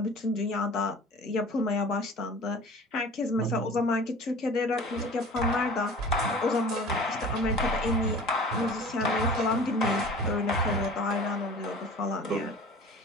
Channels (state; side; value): normal; both; correlation 0.42